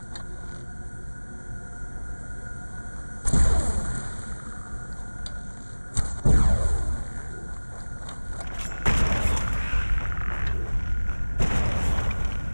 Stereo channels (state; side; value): inverted; both; correlation -1.00